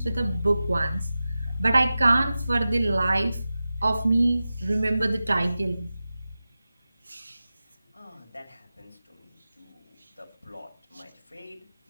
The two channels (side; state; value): both; inverted; correlation -0.95